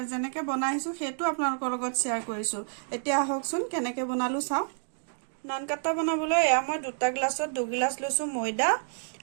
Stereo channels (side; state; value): left; silent; digital silence